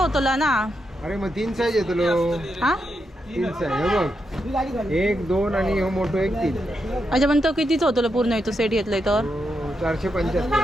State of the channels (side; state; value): both; normal; correlation 0.84